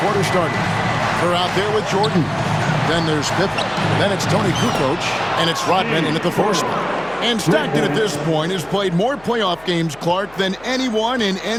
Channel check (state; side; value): noise; left; hum, 25 dB below the sound